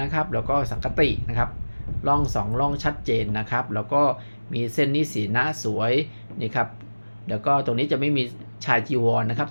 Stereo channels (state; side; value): inverted; both; correlation -1.00